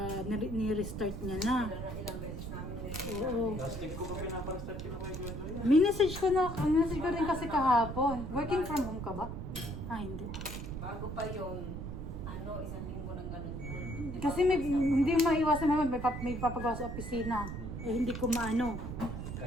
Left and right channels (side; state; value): right; noise; rumble, 7 dB below the sound